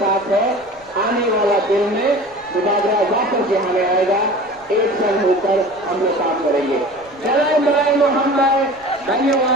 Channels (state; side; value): noise; right; rumble, 30 dB below the sound